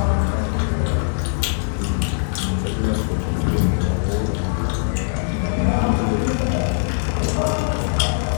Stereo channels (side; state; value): right; silent; digital silence